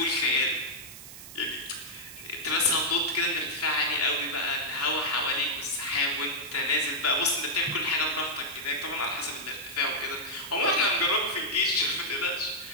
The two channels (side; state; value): right; noise; hiss, 14 dB below the sound